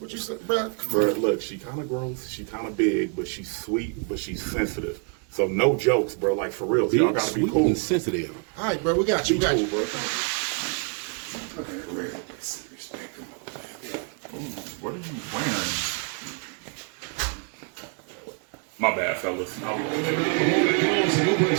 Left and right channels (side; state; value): left; quieter; 38.2 dB